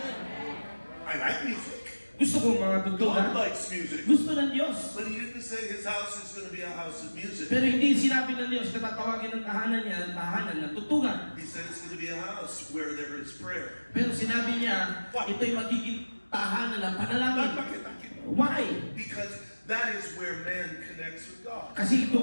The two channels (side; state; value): both; inverted; correlation -1.00